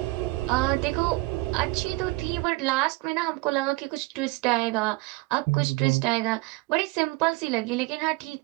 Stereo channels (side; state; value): left; quieter; 22.9 dB